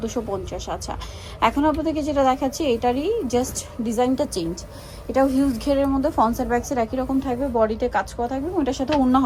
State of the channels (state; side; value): identical; both; correlation 1.00